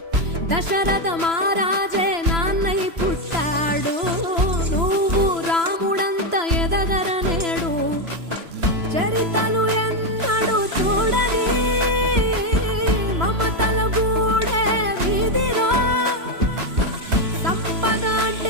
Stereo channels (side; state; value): left; late; 3.0 ms